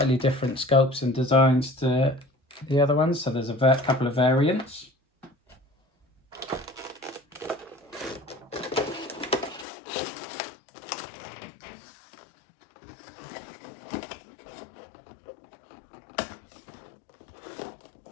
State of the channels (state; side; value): drops out; right; at 9.7 s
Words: different sculpts and designs to the other ones. So there's a couple of variants.